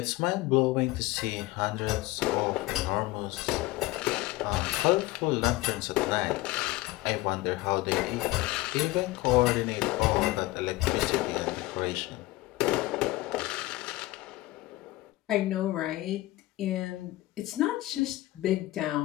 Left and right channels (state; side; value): quieter; right; 18.7 dB